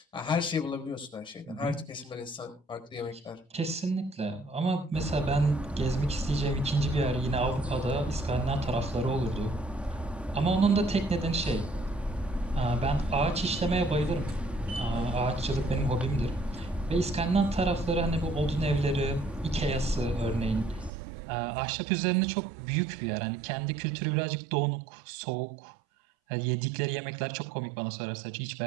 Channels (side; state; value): left; drops out; at 20.9 s